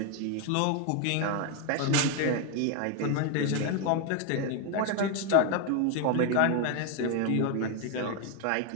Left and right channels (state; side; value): different; both; correlation 0.01